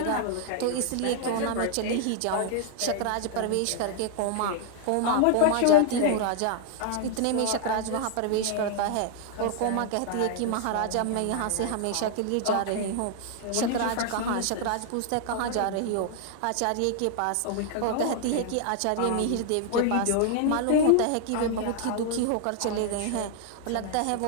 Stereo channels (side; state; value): both; different; correlation 0.00